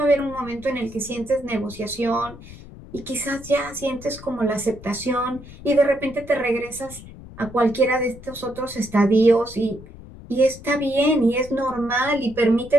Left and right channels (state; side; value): noise; left; rumble, 17 dB below the sound